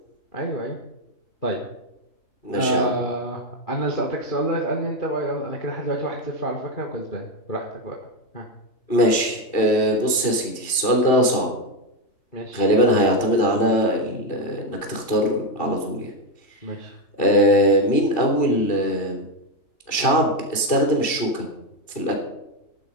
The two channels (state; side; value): late; right; 2.7 ms